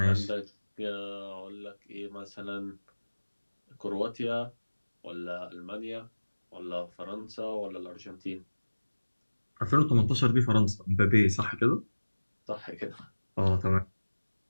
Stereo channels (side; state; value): both; inverted; correlation -1.00